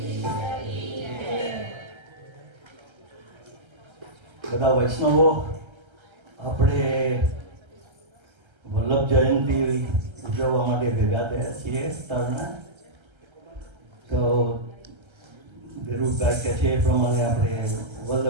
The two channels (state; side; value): late; left; 1.3 ms